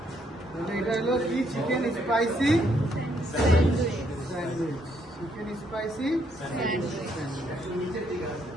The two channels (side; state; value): both; normal; correlation 0.72